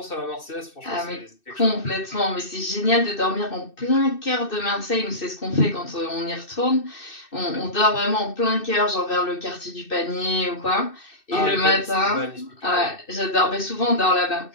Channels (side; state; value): right; late; 2.6 ms